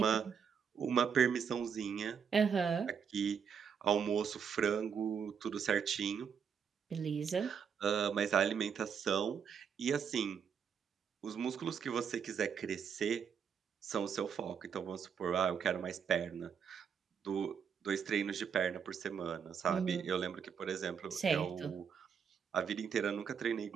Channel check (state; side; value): quieter; left; 7.1 dB